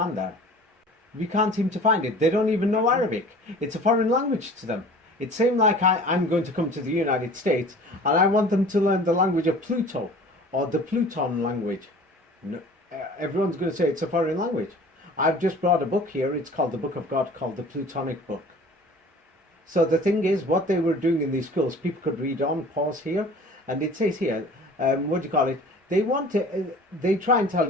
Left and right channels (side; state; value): both; normal; correlation 0.45